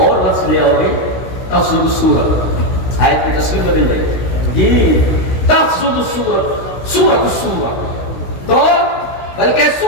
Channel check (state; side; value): late; right; 16 ms